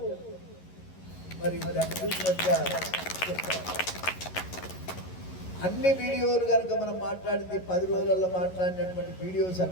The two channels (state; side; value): late; right; 11 ms